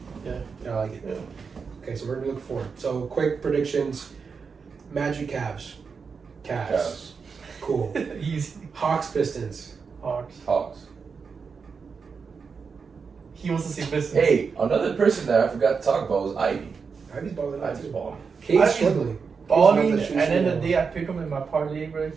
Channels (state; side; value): quieter; left; 5.5 dB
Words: Yeah. I like it. Yeah. Okay, so we're gonna look forward. So quick predictions: Magic, Cavs. Cavs. Cool. Easy. Hawks, Pistons. Hawks. He wants to see Pistons. Hey, another person that I forgot to talk about was Ivy. Ivy's balling out Ivy's too. balling. Cade's Ivy's struggling. Balling, Cade's and not then the shooting day I pick him in my parlay, bro,